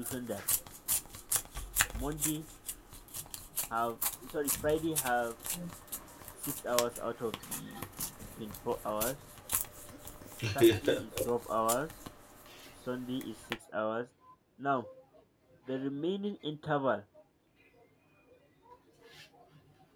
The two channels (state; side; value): identical; both; correlation 1.00